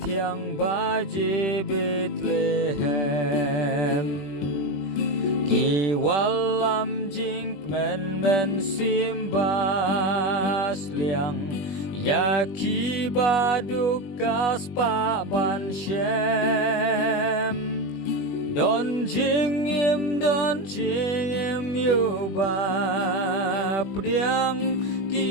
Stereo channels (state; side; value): late; right; 21 ms